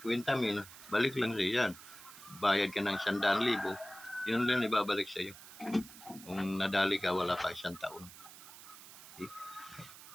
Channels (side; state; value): right; noise; hiss, 17 dB below the sound